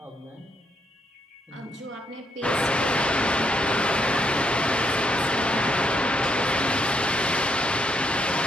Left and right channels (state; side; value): normal; both; correlation 0.75